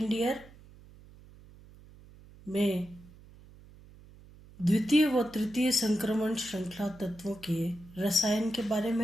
year में द्वितीय व तृतीय संक्रमण श्रृंखला तत्वों के रसायन के बारे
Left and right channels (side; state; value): right; noise; hum, 22 dB below the sound